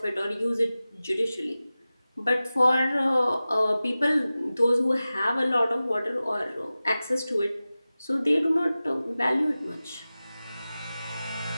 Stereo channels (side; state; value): both; inverted; correlation -0.96